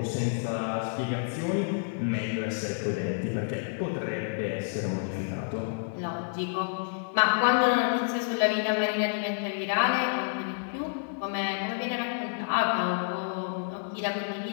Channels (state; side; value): silent; right; digital silence